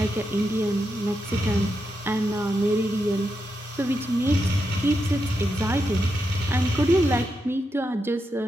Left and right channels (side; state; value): both; normal; correlation 0.85